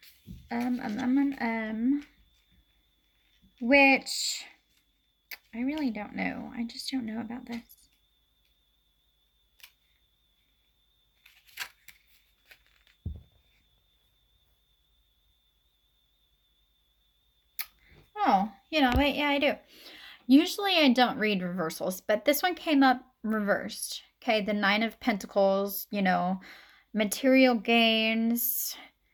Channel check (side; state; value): both; identical; correlation 1.00